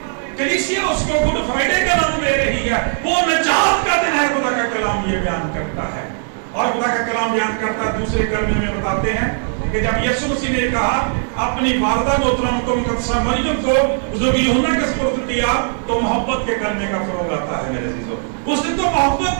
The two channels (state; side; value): silent; left; 64 dB below the other